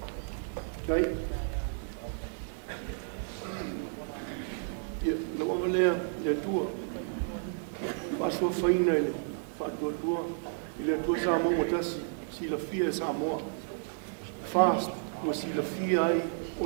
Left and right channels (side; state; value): left; silent; digital silence